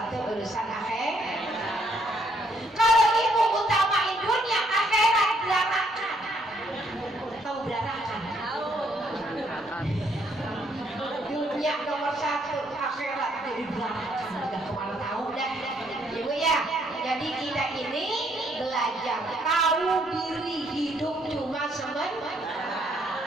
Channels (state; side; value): normal; both; correlation 0.70